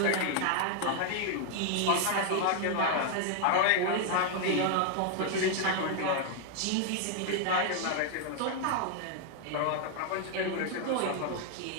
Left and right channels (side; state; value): both; different; correlation 0.00